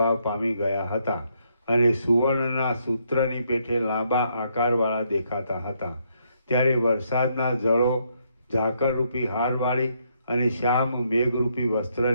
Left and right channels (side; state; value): both; inverted; correlation -0.74